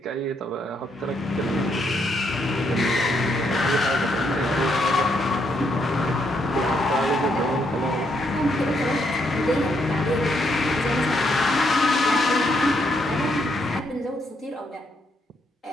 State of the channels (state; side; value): normal; both; correlation 0.75